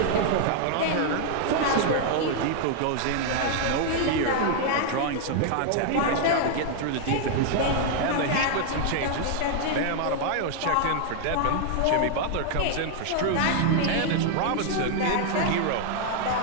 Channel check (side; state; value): both; different; correlation 0.00